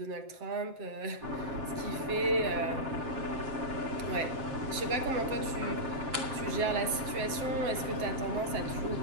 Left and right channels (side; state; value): left; late; 7.5 ms